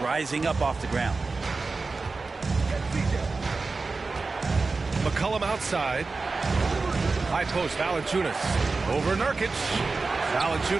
rising up off the ground. McCollum outside. High post, Valanciunas. Over Nurkic.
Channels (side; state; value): left; quieter; 3.9 dB